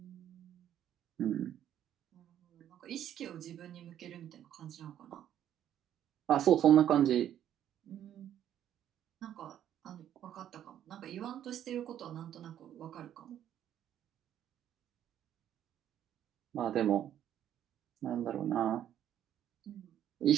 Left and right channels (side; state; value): left; quieter; 10.7 dB